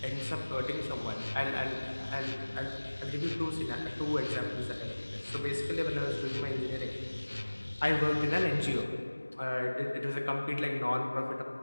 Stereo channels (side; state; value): both; inverted; correlation -1.00